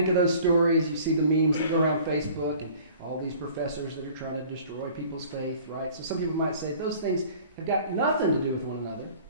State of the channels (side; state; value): both; inverted; correlation -0.49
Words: of those stories. You see the memes that go around Facebook, and all these professors that are trying to destroy people's faith, right? So some people might say those things have got nothing to do with one another.